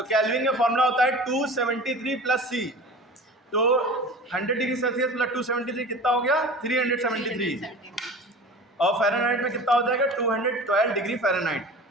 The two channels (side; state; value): both; normal; correlation 0.38